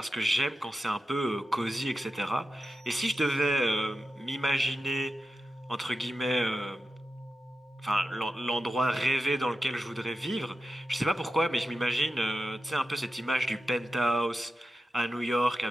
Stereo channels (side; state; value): both; normal; correlation 0.91